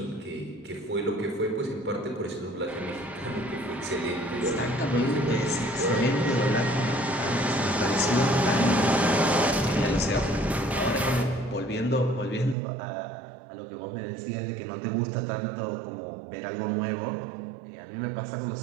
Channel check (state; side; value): drops out; left; at 12.6 s